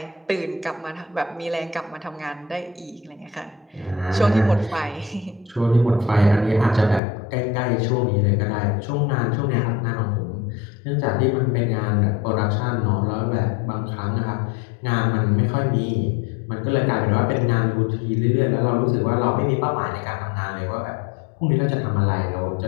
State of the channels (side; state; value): right; drops out; at 7.0 s